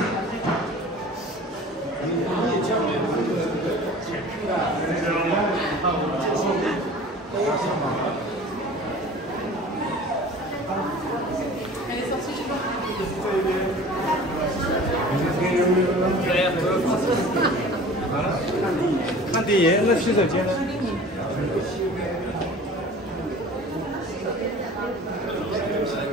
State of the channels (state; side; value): normal; both; correlation 0.43